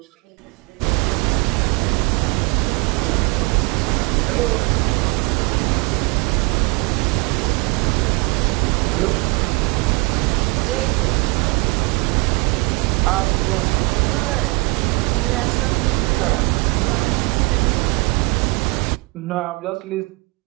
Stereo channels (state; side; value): quieter; left; 27.3 dB